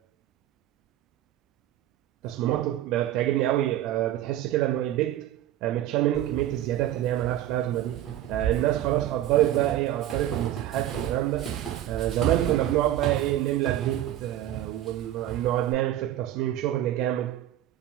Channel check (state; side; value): quieter; left; 12.8 dB